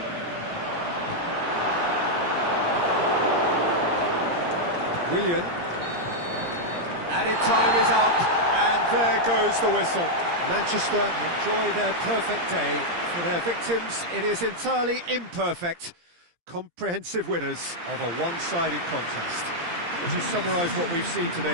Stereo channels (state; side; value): late; left; 17 ms